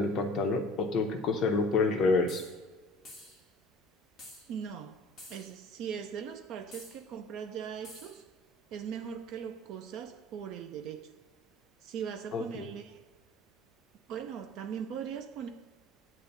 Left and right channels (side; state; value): both; normal; correlation 0.46